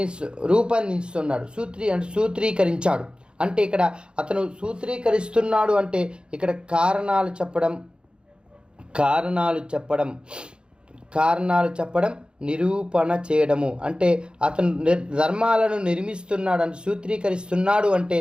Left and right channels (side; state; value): left; late; 0.052 ms